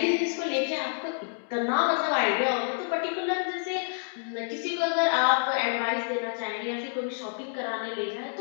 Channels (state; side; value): silent; right; digital silence